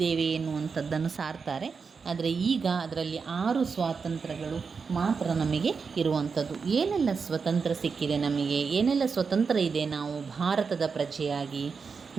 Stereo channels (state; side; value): quieter; left; 5.4 dB